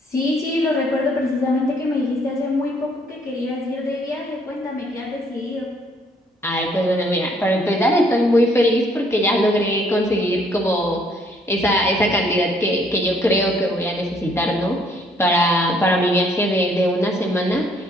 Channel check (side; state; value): both; normal; correlation 0.65